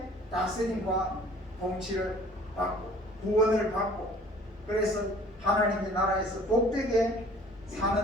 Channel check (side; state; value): both; normal; correlation 0.52